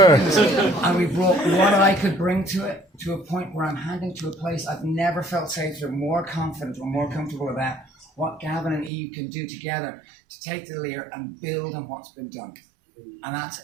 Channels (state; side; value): drops out; left; at 8.9 s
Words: And we brought what I could bring to it to a point where I'm handing to a place I've never felt safer, more confident or more comfortable about what Gavin and Eve can do together to take the LIR and build on what's been done. And that's